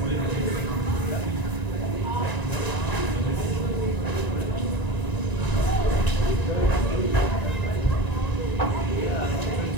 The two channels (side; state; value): right; late; 1.9 ms